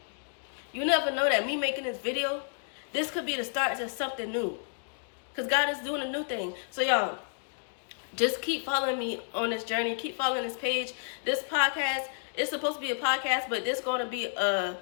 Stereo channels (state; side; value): silent; right; digital silence